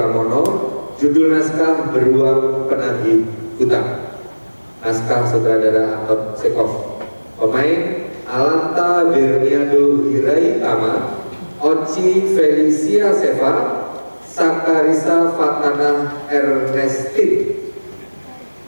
judul naskah Beruang Penagih Hutang. Naskah sutradara Anton Chekhov. Pemain Alanta Berniado Hiraitama, Oci Felicia Seva, Sakarisa Fatana Ernestin.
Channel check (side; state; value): both; inverted; correlation -1.00